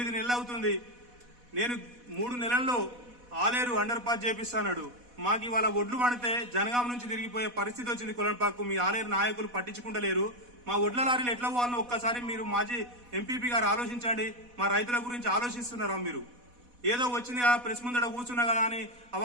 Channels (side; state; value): left; late; 4.1 ms